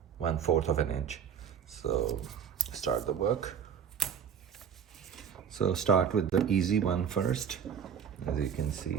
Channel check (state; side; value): quieter; left; 7.9 dB